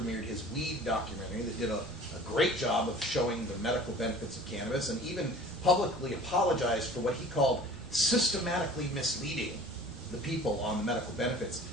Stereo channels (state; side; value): normal; both; correlation 0.45